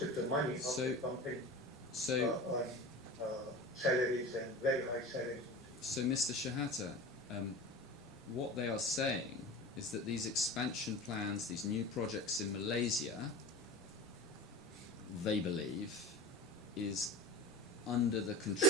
the money of the company on salaries and very high salaries. So, Mr. Shehata, what they are saying is that these expansion plans, these new projects in Malaysia, they believe, is under the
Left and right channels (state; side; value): normal; both; correlation 0.32